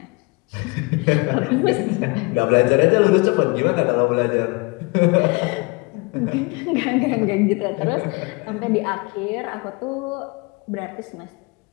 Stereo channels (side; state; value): right; quieter; 28.2 dB